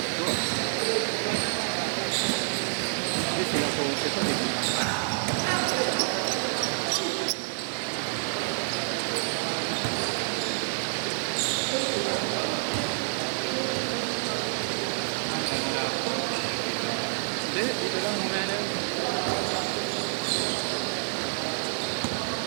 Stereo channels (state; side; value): silent; left; digital silence